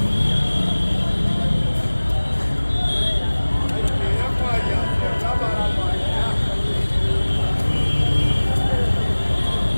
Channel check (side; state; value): both; inverted; correlation -1.00